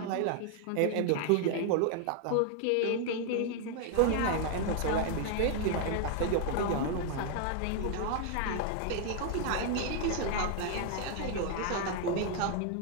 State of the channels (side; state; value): both; different; correlation 0.00